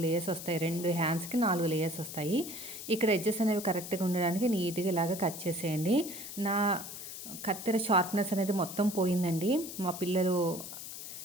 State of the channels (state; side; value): noise; left; hiss, 10 dB below the sound